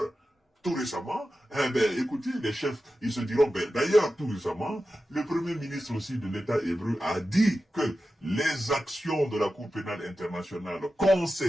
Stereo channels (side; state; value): both; normal; correlation 0.93